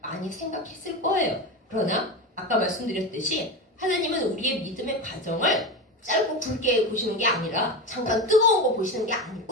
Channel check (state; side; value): normal; both; correlation 0.21